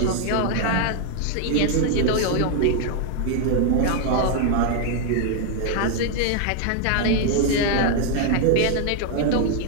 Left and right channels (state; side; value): different; both; correlation 0.00